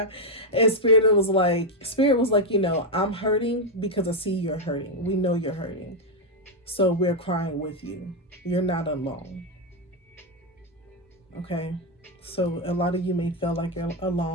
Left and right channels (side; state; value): both; normal; correlation 0.02